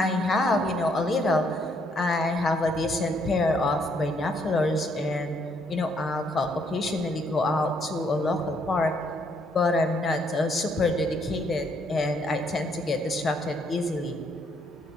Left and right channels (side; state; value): both; normal; correlation 0.70